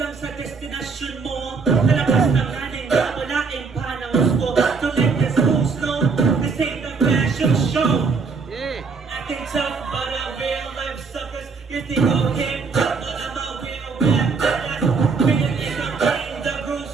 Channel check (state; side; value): quieter; left; 4.9 dB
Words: sa destinasyon mo. Nalabas ng nanin na walaing panahon ko. So let this go slow, this ain't a fashion show. Acting tough, but I'm real life suckers. You think I'm hip hop, but I'm a real rap badass. Feeling is I'm playing the grooves,